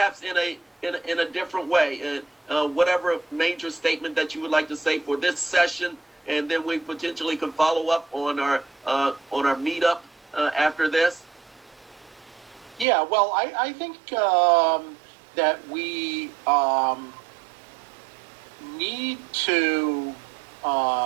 in a different way. Whatever major statement that you would like to say for this session, and then we potentially can follow up on our meetup after this. Yeah, well, I think that we need to.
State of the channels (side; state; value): left; drops out; at 12.9 s